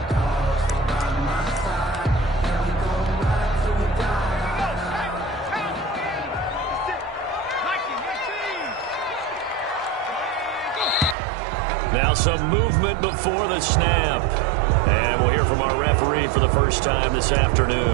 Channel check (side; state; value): left; drops out; at 11.2 s